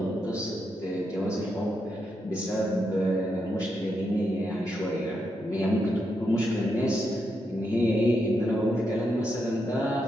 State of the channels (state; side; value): normal; both; correlation 0.83